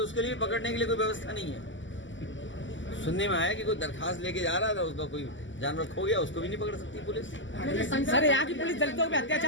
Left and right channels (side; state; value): right; late; 0.55 ms